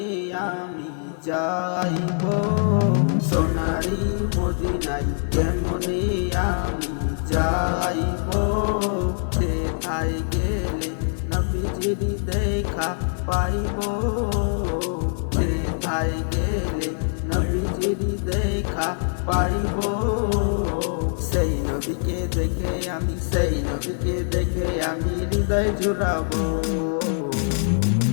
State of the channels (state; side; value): silent; right; 60 dB below the other